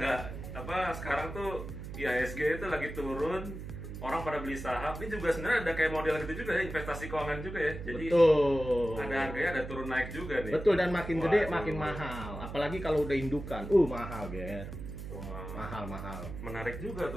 sekarang tuh IHSG itu lagi turun. Orang pada beli saham, ini juga sebenarnya ada kayak model gitu juga ya, investasi keuangan juga ya. Jadi betul. Ada harganya, ada turun naik juga nih. Betul, dan makin gede makin mahal. Apalagi kalau udah indukan. Mahal, Ger. Mahal. Menarik juga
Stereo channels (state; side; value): noise; right; hum, 9 dB below the sound